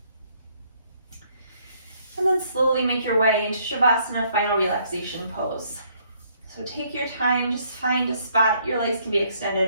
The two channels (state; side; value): inverted; both; correlation -0.67